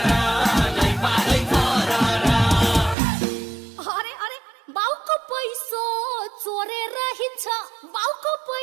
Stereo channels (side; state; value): left; drops out; at 3.0 s